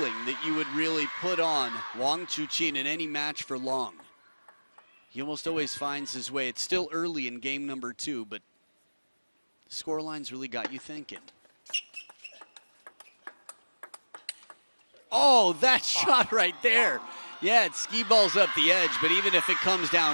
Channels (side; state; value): both; inverted; correlation -1.00